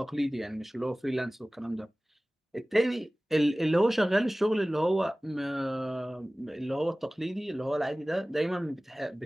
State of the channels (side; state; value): both; normal; correlation 0.98